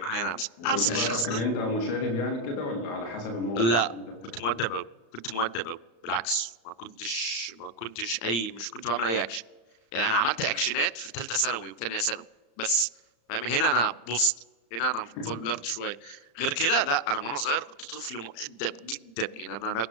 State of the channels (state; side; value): late; right; 35 ms